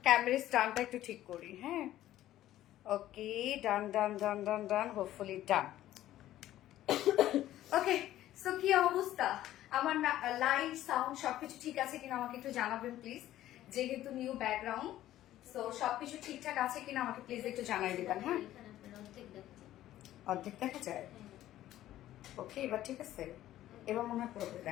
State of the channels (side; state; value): right; quieter; 13.6 dB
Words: ক্যামেরা স্ট্যান্ডটা একটু ঠিক করি। হ্যাঁ ওকে, ডান ডান ডান ডান ডান, হোপফুলি ডান। ওকে, সো কি অবস্থা আমার, লাইট সাউন্ড সবকিছু ঠিক আছে কিনা আমাকে একটু জানাবেন প্লিজ। যেহেতু নিউ ব্যাকগ্রাউন্ড, সো সবকিছু ঠিকঠাক আছে কিনা আমাকে প্লিজ একটু জানাই দিবেন। হ্যাঁ, অর্ধেক দেখা যায়। ওকে, এবার ঠিক আছে, এবার মনে হয় পুরোপুরি